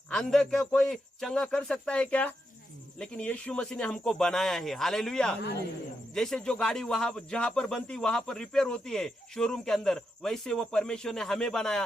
अंधे को कोई चंगा कर सकता है क्या? लेकिन यीशु मसीह ने हमको बनाया है। हालेलुया। जैसे जो गाड़ी वहां जहां पर बनती वहां पर रिपेयर होती है शोरूम के अंदर, वैसे वो परमेश्वर ने हमें बनाया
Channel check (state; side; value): normal; both; correlation 0.84